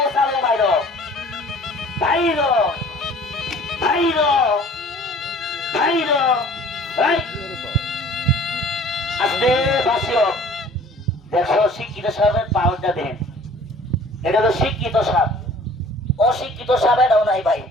চালো বাইরো বাইরো বাইরো বাইরো। আস্তে বাসিও, দেখো শিক্ষিত সাপের পাওয়ারটা দেন। এটা তো শিক্ষিত সাপ, অশিক্ষিত সাপ এটাও নাই ভাই,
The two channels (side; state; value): both; normal; correlation 0.49